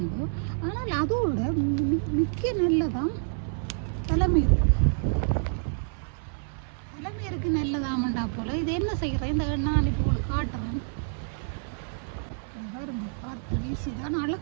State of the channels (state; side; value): silent; left; 58 dB below the other